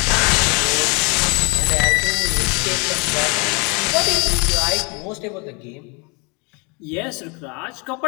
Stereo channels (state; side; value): quieter; right; 31.2 dB